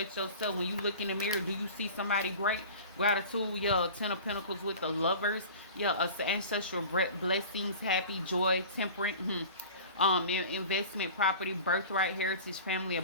yourself. When you look in the mirror, do you see somebody great? Gratitude, yeah, Ten of Pentacles with the Lovers, yeah, ancestral blessings, happy, joy, temperate, investment, property, birthright, heritage, family,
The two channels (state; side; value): inverted; both; correlation -0.39